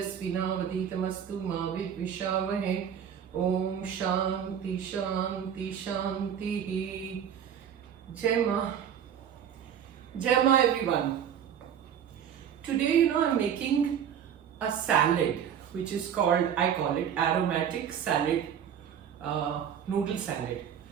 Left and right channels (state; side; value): quieter; left; 8.7 dB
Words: Ma Vidvishavahe Om Shanti Shanti Shanti. Jai Ma. Jai Ma everyone. Today I'm making a salad which is called, I call it aromatic salad, noodle salad.